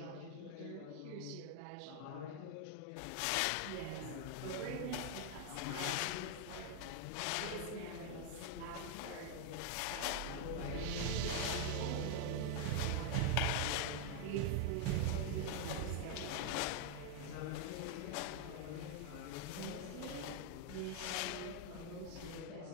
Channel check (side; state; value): both; different; correlation 0.00